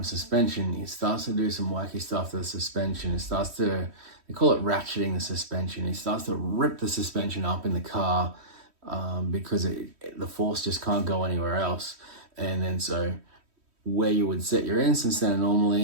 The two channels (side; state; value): left; late; 3.1 ms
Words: suspension, it starts to do some wacky stuff to the suspension. They call it ratcheting the suspension. It starts to rip the suspension up in the car because the force just can't go anywhere else. And then so where you would set your instant center